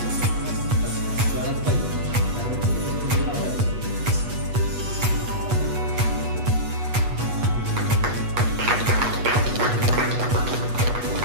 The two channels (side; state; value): left; late; 8.2 ms